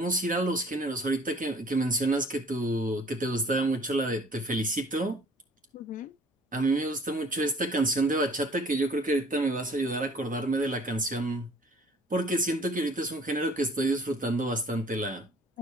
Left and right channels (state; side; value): normal; both; correlation 0.53